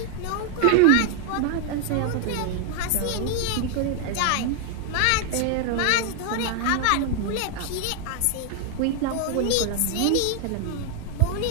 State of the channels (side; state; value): both; different; correlation 0.00